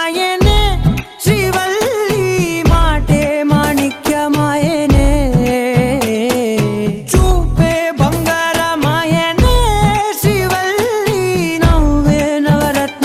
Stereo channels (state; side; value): identical; both; correlation 1.00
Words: శ్రీవల్లి మాటే మాణిక్యమాయనే చూపే బంగారమాయనే శ్రీవల్లి నవ్వే